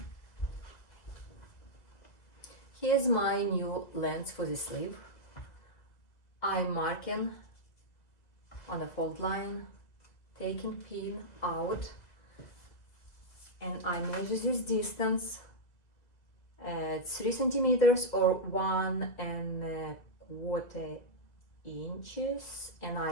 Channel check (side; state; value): right; late; 2.0 ms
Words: Here's my new length for the sleeve. I'm marking on a fold line, taking pin out, and I measure this distance at 3 centimeters or 1.25 inches, and